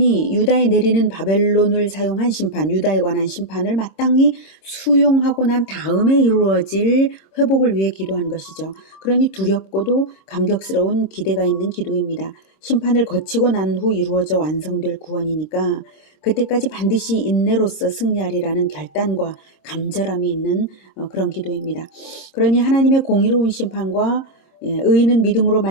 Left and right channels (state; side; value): late; right; 22 ms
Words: 유다에 내리는 바벨론을 사용한 심판, 유다에 관한 심판을 마땅히 수용하고 난 다음에 이루어질 회복을 위해 기도한 것이죠. 그러니 두렵고도 감격스러운 기대가 있는 기도입니다. 심판을 거치고 난 후 이루어져 완성될 구원이니까 그때까지 반드시 인내로서 승리하리라는 결단과 간절함이 있는 그런 기도입니다. 그러니 하나님의 공의로운 심판과 의인은 믿음으로